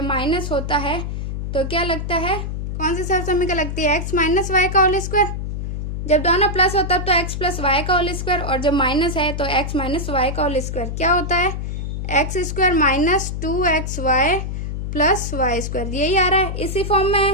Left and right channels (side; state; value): left; noise; hum, 4 dB below the sound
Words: माइनस होता है तो क्या लगता है, कौन सी सर्व समीकरण लगती है x माइनस वाई का होल स्क्वायर, जब दोनों प्लस होता है तो x प्लस वाई का होल स्क्वायर, और जब माइनस है तो x माइनस वाई का होल स्क्वायर क्या होता है x square minus 2xy plus y square, यही आ रहा है, इसी फॉर्म में